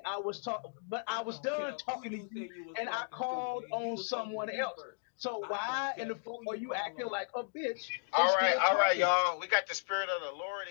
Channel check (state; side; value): silent; right; digital silence